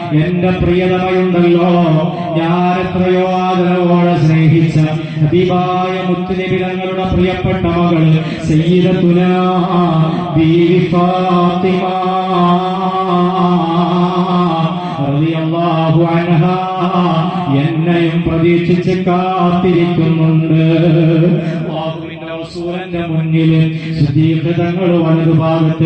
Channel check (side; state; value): both; identical; correlation 1.00